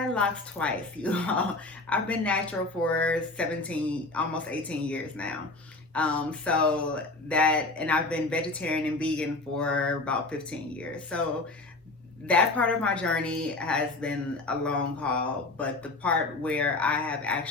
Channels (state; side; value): quieter; right; 3.2 dB